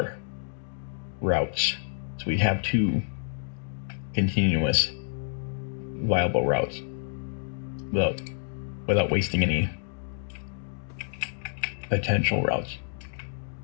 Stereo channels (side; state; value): right; silent; digital silence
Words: routes. So we have 2 continuous viable routes without without wasting any potential routes.